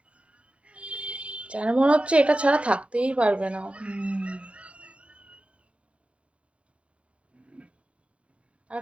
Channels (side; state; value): left; late; 0.061 ms